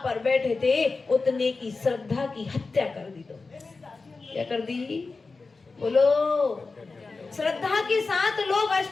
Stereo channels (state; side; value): quieter; right; 4.0 dB